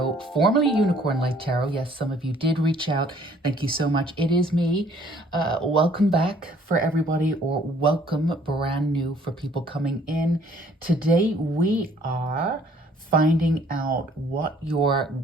formerly Unicorn Light Tarot. Yes, some of you did reach out. Thank you so much. It is me. Welcome back for everybody, or welcome brand new for people coming in. Today we are finding out what your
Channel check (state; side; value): normal; both; correlation 0.60